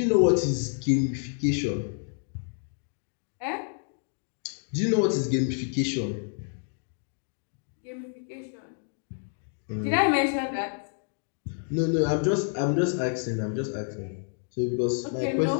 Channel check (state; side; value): silent; right; 59 dB below the other